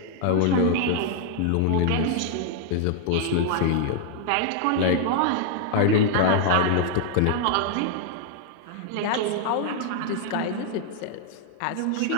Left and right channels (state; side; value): different; both; correlation 0.00